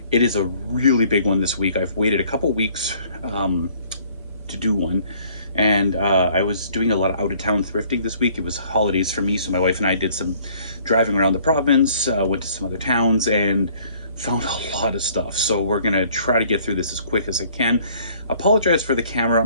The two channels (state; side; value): inverted; both; correlation -0.58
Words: It is a really big one this week. I've waited a couple weeks to do one, and I was doing a lot of out-of-town thrifting this week. It was holidays for me, so my wife and I did some driving around the province, went to some other towns, and found a lot of stuff. So we're gonna try to get through this as quick as I can. Apologize for the camera.